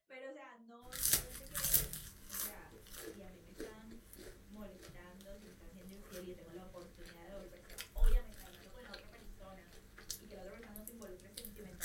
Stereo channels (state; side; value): identical; both; correlation 1.00